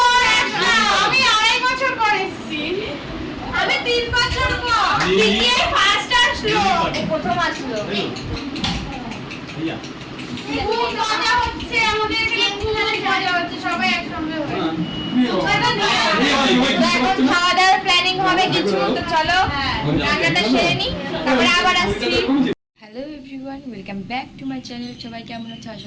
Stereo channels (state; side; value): identical; both; correlation 1.00